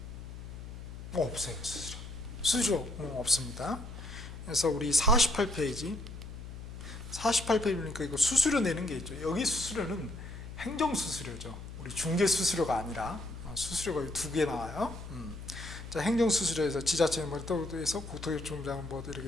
없어요. 수수료 없습니다. 그래서 우리 48페이지 보니까 이거 수수료 내는 게 있죠. 여기 수수료는 행정수수료죠. 우리 중개수수료가 아니라 수수료가 두 개 나와요. 자, 행정수수료에서 지자체 에서 국토교통부장 뭐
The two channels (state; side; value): noise; left; hum, 11 dB below the sound